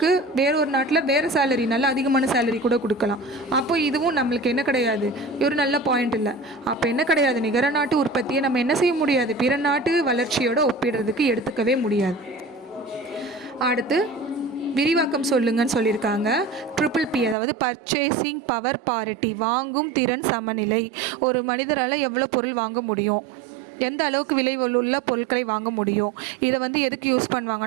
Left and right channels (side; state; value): left; drops out; at 17.4 s